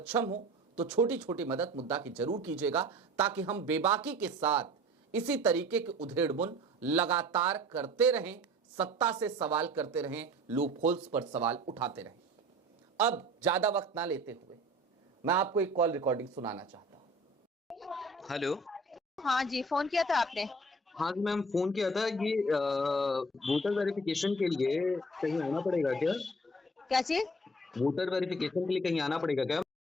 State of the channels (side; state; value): both; normal; correlation 0.47